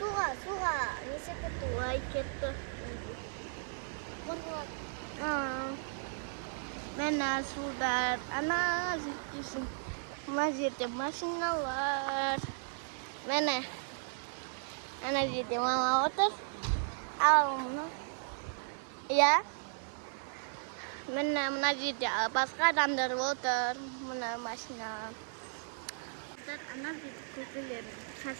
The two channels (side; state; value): left; silent; digital silence